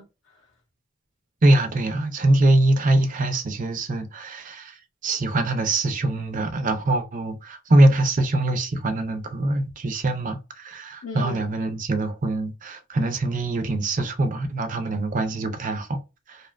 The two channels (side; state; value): both; normal; correlation 0.80